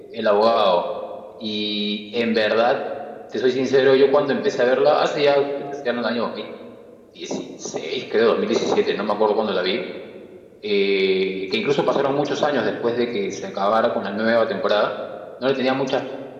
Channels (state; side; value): identical; both; correlation 1.00